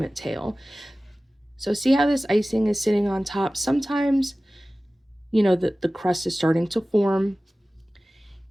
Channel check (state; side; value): normal; both; correlation 0.97